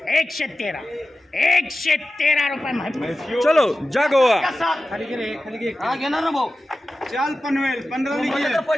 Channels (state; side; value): normal; both; correlation 0.94